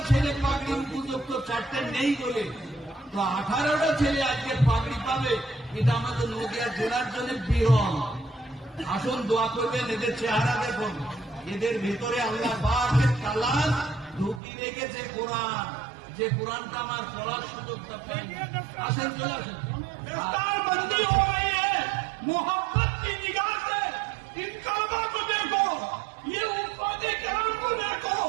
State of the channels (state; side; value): drops out; left; at 14.4 s